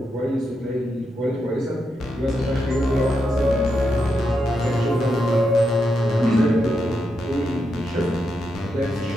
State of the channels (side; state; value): both; normal; correlation 0.84